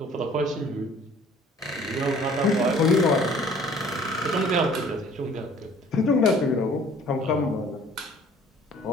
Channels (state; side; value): normal; both; correlation 0.53